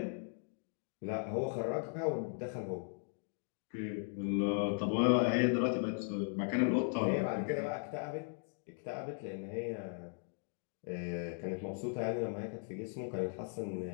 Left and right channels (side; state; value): right; silent; 53 dB below the other